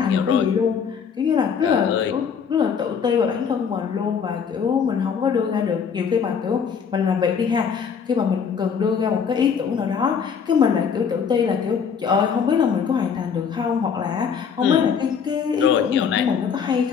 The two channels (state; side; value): quieter; right; 6.8 dB